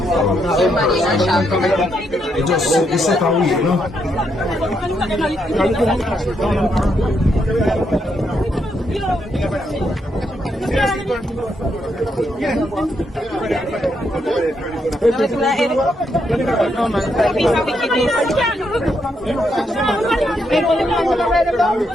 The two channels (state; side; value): normal; both; correlation 0.78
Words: It just it's set away, you know.